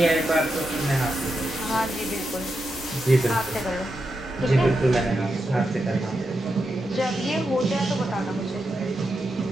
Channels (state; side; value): normal; both; correlation 0.87